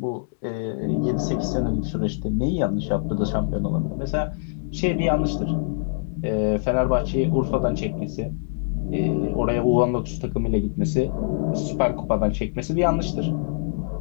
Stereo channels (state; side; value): silent; right; digital silence